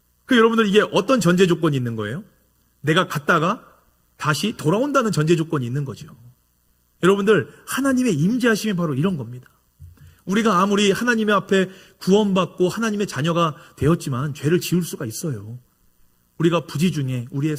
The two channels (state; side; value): identical; both; correlation 1.00